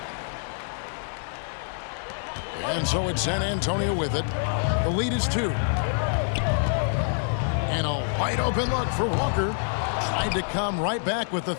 And so it's San Antonio with it. The lead is 2. And a wide open look for Walker. Tried to come right back with the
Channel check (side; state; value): right; silent; digital silence